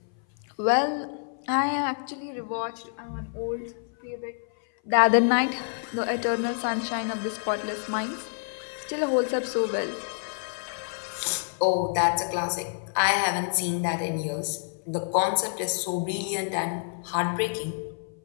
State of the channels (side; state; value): right; silent; 57 dB below the other